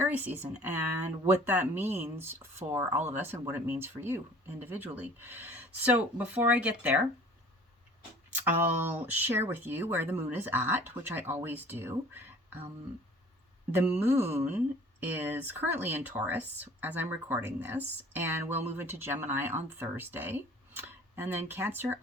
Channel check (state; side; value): normal; both; correlation 0.49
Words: season and what that means for all of us and what it means for you individually. So before I get there, I'll share with you where the moon is at, which I always do. The moon is currently in Taurus as I'm recording this, and we'll move into Gemini on Thursday, and then Cancer